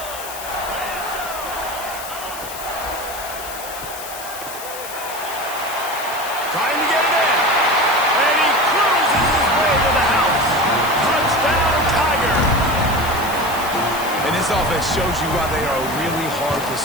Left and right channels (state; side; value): noise; left; hiss, 11 dB below the sound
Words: Trying to get it in. And he cruises his way to the house. Touchdown, Tiger. And this This offense shows you why they are really hard to